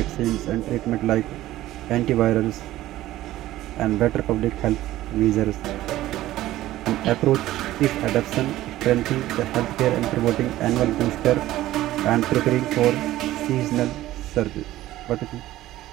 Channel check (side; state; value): left; quieter; 15.1 dB